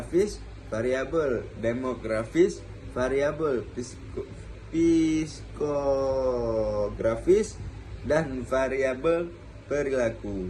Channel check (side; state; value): both; identical; correlation 1.00